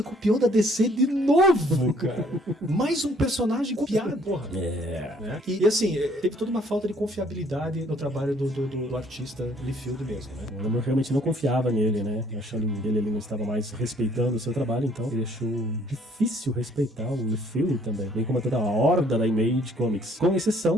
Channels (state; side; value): normal; both; correlation 0.62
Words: copiou da DC de novo, cara. Mais um personagem copiado, porra. Né? E assim, teve toda uma falta de confiabilidade no trabalho do artista Liefeld mesmo, né? O Alan Moore realmente não confiava nele, né? Achando que ele não estava mais respeitando o seu trabalho, então ele achou difícil respeitar o Liefeld também, bem como toda a horda da Image Comics. Com